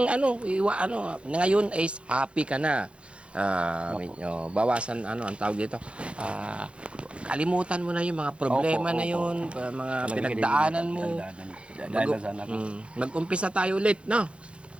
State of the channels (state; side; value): late; left; 0.059 ms